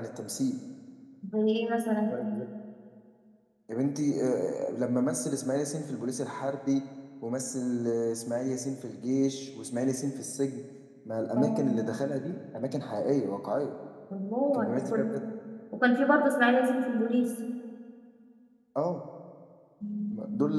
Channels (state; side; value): identical; both; correlation 1.00